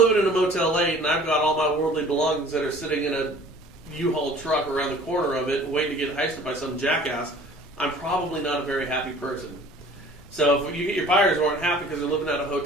in a Motel 8 and I've got all my worldly belongings that are sitting in a U-Haul truck around the corner of it waiting to get heisted by some jackass, I'm probably not a very happy person. So if you get your buyers who aren't happy because they're living out of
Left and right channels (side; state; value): both; normal; correlation 0.49